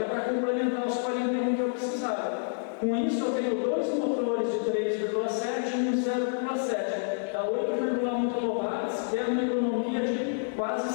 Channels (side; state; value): right; silent; 59 dB below the other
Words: é para complementar os 41 que eu precisava. Com isso, eu tenho 2 motores de 3,7 e um 0,7. Dá 8,1 kW, que é uma economia de quase